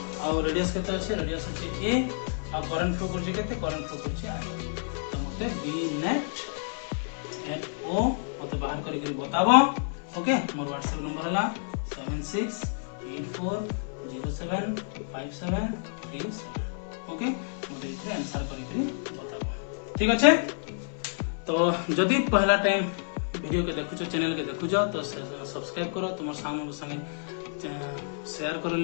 और रेडियस केते আছে रेडियस আছে a और करंट फ्लो करजे केते करंट फ्लो करजे i बी नेट एट ओ मते बाहर करी करी बताबो। ओके मोर व्हाट्सएप नंबर हला 7684075737 ओके मते इथरे आंसर करी करी बताबो ठीक अच्छे। तो जदी पहला टाइम वीडियो के देखुछो चैनल के देखुछो तो सब्सक्राइब करो तुम सामने संगे शेयर करो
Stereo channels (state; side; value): silent; right; 58 dB below the other